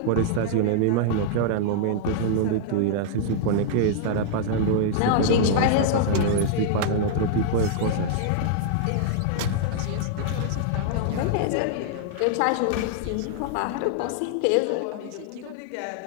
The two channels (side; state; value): both; different; correlation -0.01